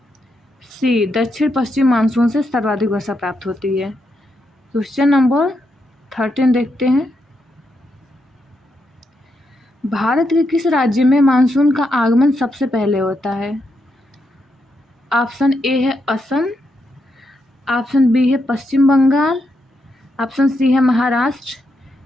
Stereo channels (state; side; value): normal; both; correlation 0.82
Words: सी दक्षिण पश्चिम मानसून से सर्वाधिक वर्षा प्राप्त होती है। क्वेश्चन नंबर 13 देखते हैं, भारत के किस राज्य में मानसून का आगमन सबसे पहले होता है। ऑप्शन ए है असम, ऑप्शन बी है पश्चिम बंगाल, ऑप्शन सी है महाराष्ट्र,